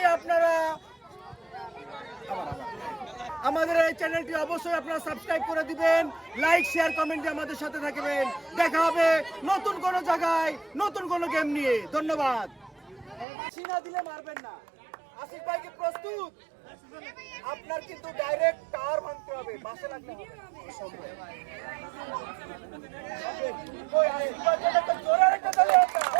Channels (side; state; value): left; drops out; at 13.2 s